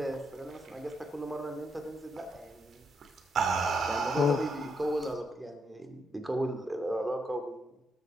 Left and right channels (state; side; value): normal; both; correlation 0.78